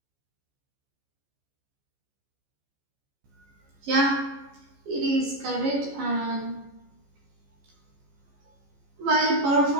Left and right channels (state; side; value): late; left; 14 ms